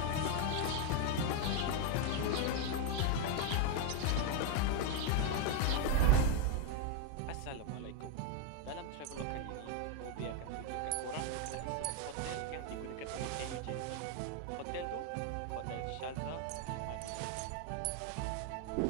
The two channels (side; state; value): both; different; correlation 0.01